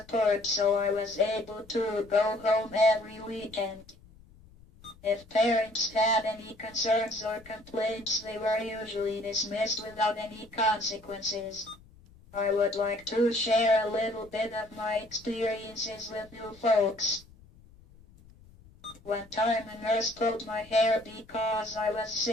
so I was able to go home every weekend. If parents had any concerns or complaints, they were usually dismissed without any consequences. I would like to share a little bit of my experiences with you folks. One time a nurse pulled my hair because I was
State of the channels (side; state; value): left; noise; rumble, 24 dB below the sound